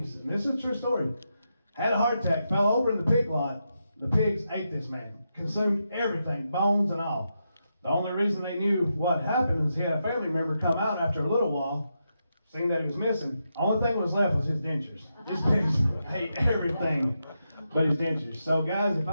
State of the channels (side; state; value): both; inverted; correlation -0.85